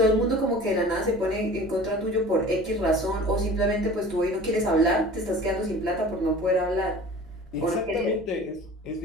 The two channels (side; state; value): both; normal; correlation 0.42